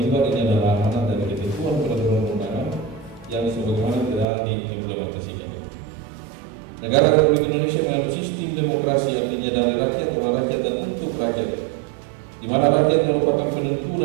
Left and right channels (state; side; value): drops out; left; at 4.2 s